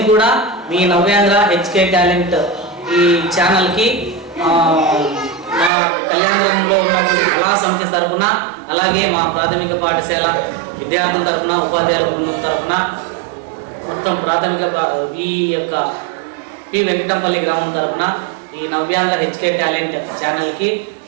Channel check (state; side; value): drops out; left; at 5.7 s